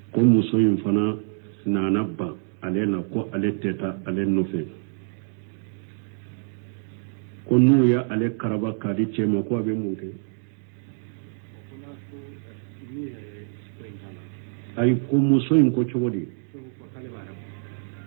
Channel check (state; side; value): silent; left; 61 dB below the other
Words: ko muso in fana nana ban ale la ko ale tɛ taa ale nɔfɛ ko n'u ye ale karaba k'a di cɛ ma ko a bɛ mun kɛ ayi ko muso in ko cogo di